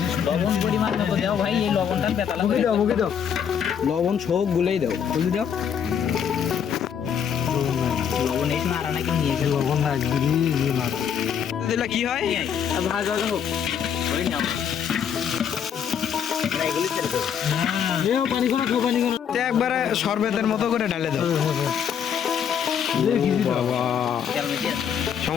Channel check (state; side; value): quieter; right; 8.0 dB